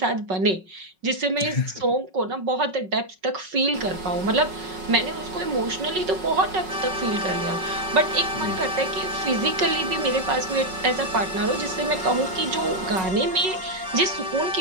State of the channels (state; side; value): late; left; 5.4 ms